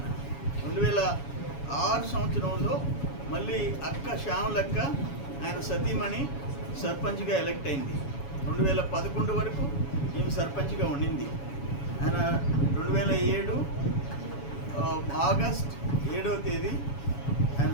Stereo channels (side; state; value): right; late; 7.1 ms